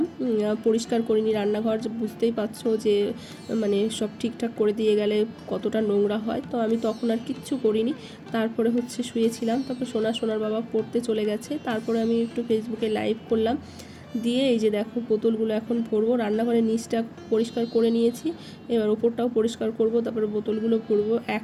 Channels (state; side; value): identical; both; correlation 1.00